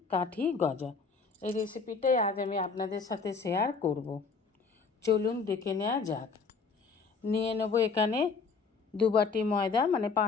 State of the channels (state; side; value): quieter; right; 4.9 dB